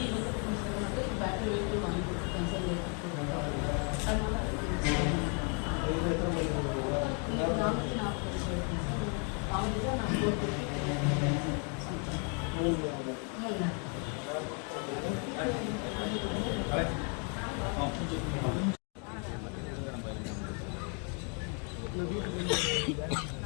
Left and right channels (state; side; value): quieter; right; 38.4 dB